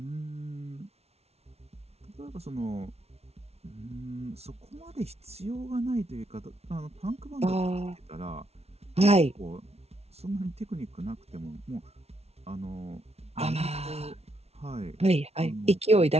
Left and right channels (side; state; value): left; late; 0.31 ms